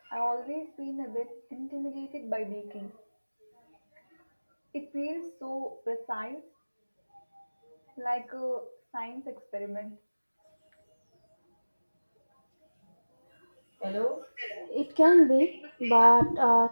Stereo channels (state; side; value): inverted; both; correlation -1.00